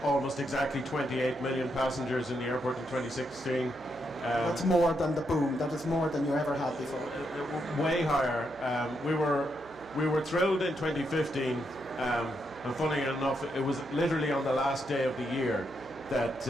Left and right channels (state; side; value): noise; right; hum, 24 dB below the sound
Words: almost exactly 28 million passengers in the airport in 2016. That's more than the boom. That is more than you ever had before. Way higher. We were thrilled in 2015, and funny enough, it was literally on the last day of the year that